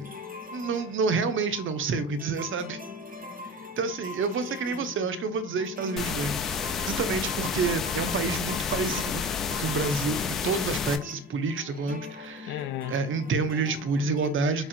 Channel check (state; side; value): normal; both; correlation 0.33